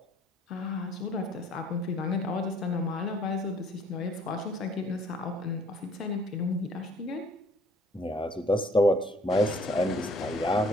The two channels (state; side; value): normal; both; correlation 0.59